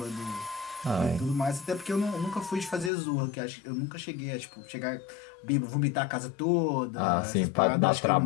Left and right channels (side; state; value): right; drops out; at 2.9 s